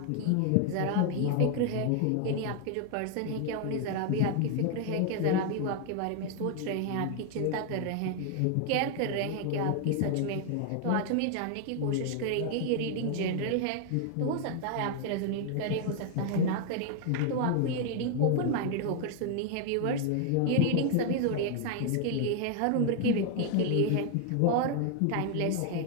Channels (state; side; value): different; both; correlation 0.00